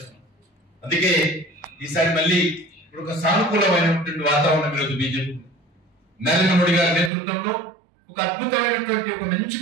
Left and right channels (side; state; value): left; drops out; at 7.1 s